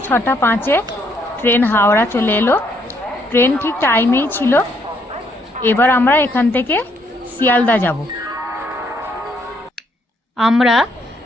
6:05 ট্রেন হাওড়া চলে এলো। ট্রেন ঠিক টাইমেই ছিল। এবার আমরা এখান থেকে শিয়ালদা যাব। আমরা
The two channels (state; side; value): normal; both; correlation 0.71